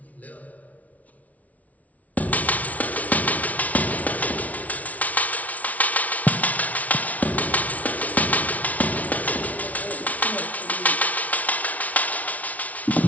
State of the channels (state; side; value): late; right; 0.071 ms